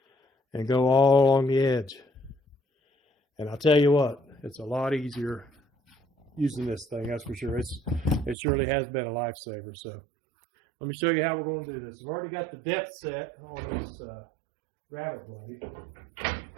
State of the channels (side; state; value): left; drops out; at 8.3 s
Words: and go all along the edge. And I'll tell you what, it's a lot easier using this thing, that's for sure. It surely has been a lifesaver. So let me show you how we're going to do this. I've already got the depth set on this rabbet blade.